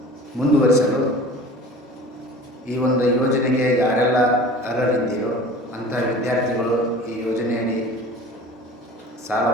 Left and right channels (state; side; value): normal; both; correlation 0.41